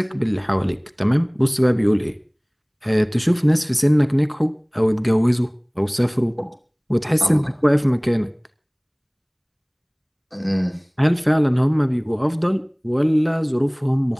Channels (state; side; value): identical; both; correlation 1.00